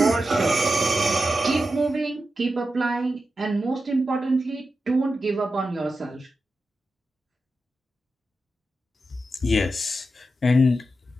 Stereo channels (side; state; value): both; normal; correlation 0.90